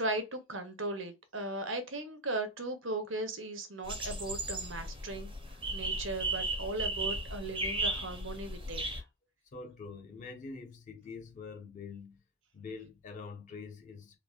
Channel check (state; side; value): normal; both; correlation 0.04